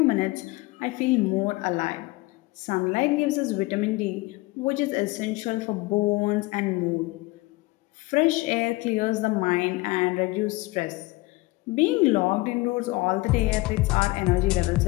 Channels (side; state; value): right; quieter; 21.9 dB